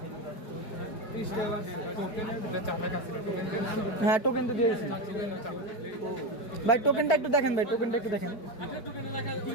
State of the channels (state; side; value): late; right; 4.5 ms